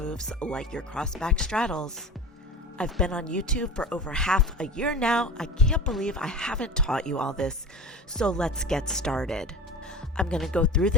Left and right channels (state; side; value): normal; both; correlation 0.33